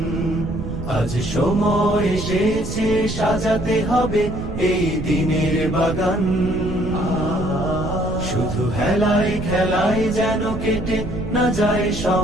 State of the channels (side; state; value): right; noise; rumble, 8 dB below the sound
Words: আজ সময় এসেছে সাজাতে হবে এই দিনের বাগান। শুধু হেলায় খেলায় যেন কেটে না যায়